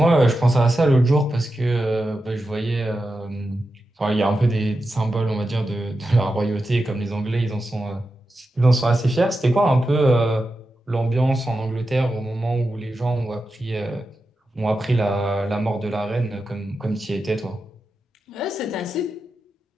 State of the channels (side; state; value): both; normal; correlation 0.90